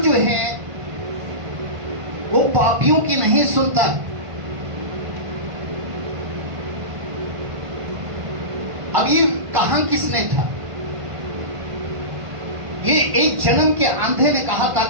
जो है वो पापियों की नहीं सुनता। अब ये कहा किसने था? ये एक जन्म के अंधे ने कहा था।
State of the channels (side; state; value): left; late; 1.5 ms